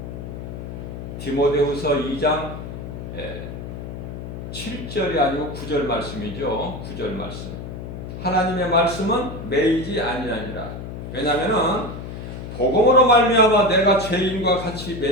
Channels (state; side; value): noise; left; hum, 9 dB below the sound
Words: 디모데후서 2장 7절이 아니고 9절 말씀이죠. 9절 말씀. 하나님의 말씀은 매이지 아니하니라. 왜냐하면은 복음으로 말미암아 내가 죄인과 같이